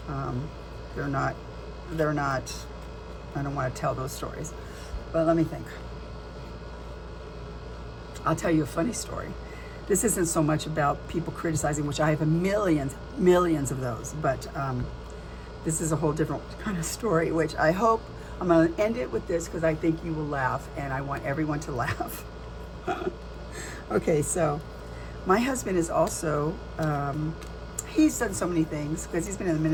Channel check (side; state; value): both; identical; correlation 1.00